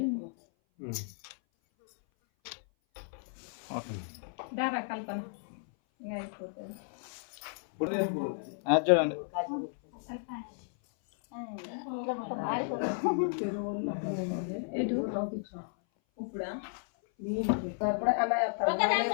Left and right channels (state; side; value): silent; right; 56 dB below the other